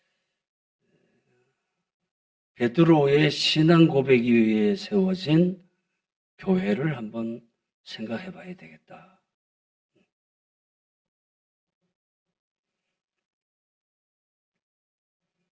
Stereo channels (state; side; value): identical; both; correlation 1.00